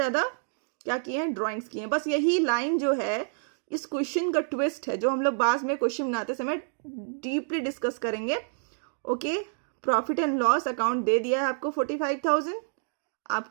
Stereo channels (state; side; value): silent; left; digital silence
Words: क्या किए हैं? ड्राइंग्स किए हैं. बस यही लाइन जो है इस क्वेश्चन का ट्विस्ट है, जो हम लोग बाद में क्वेश्चन बनाते समय डीपली डिस्कस करेंगे. Okay, profit and loss account दे दिया है आपको 45,000.